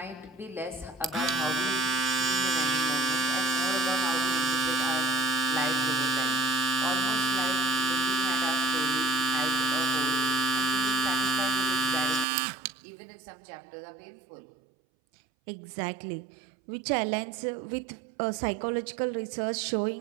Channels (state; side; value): drops out; left; at 12.2 s